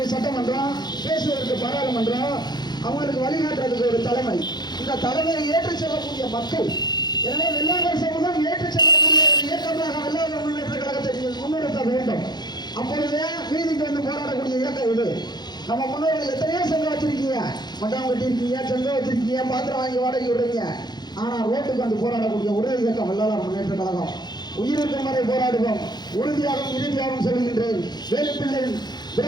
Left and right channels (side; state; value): right; late; 0.21 ms